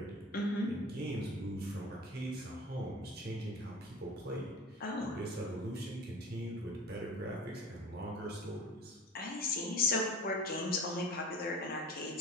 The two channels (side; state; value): both; normal; correlation 0.38